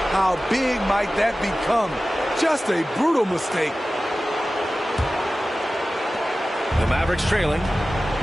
how big might that become? Just a brutal mistake. The Mavericks trailing.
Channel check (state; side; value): normal; both; correlation 0.96